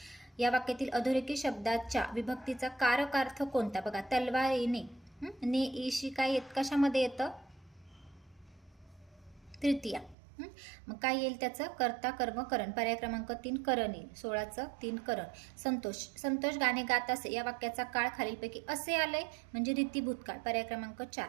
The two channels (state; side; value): drops out; left; at 10.2 s